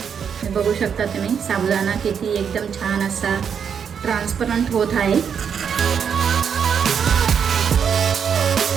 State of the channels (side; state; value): left; quieter; 7.3 dB